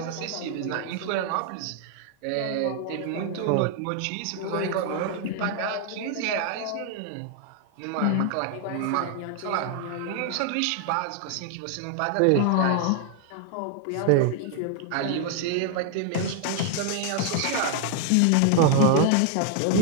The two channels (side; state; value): both; different; correlation 0.00